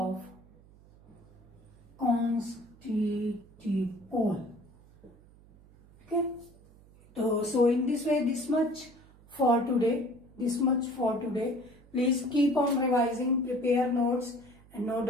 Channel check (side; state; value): right; noise; hum, 25 dB below the sound